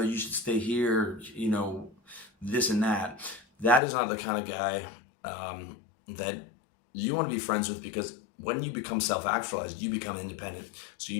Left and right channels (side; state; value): right; drops out; at 3.8 s